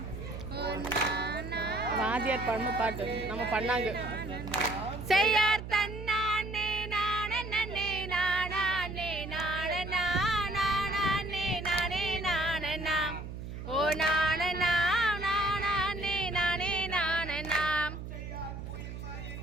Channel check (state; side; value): noise; right; hum, 9 dB below the sound